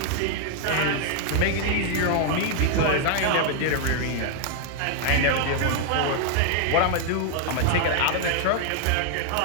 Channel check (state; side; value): different; both; correlation 0.00